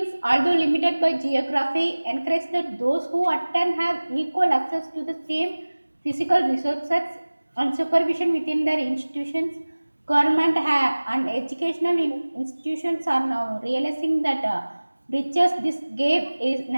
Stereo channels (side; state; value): both; inverted; correlation -1.00